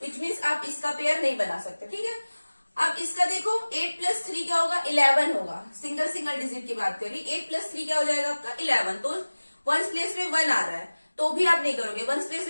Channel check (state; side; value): inverted; both; correlation -1.00